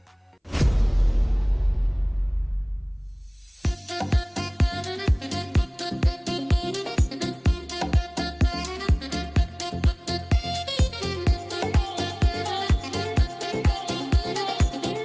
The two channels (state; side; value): identical; both; correlation 1.00